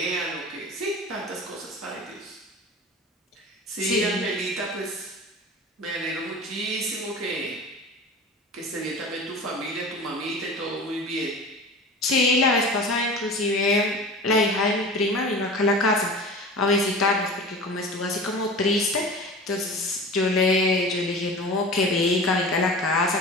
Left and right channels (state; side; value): normal; both; correlation 0.35